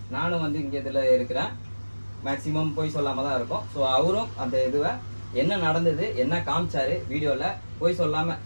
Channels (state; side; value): inverted; both; correlation -1.00